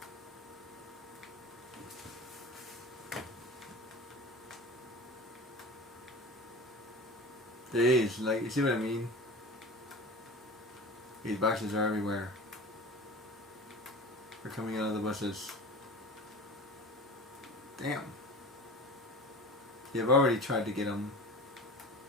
Jeez, like, you see what I mean? These boxes are everywhere. They're coming out of the bushes. Damn. Yeah, I've already tried to get them.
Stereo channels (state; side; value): normal; both; correlation 0.35